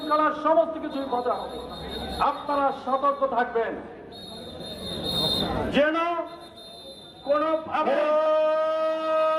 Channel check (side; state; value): both; identical; correlation 1.00